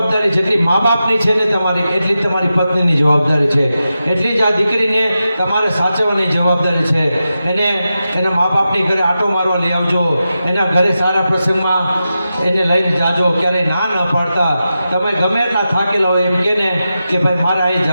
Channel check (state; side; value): inverted; both; correlation -0.91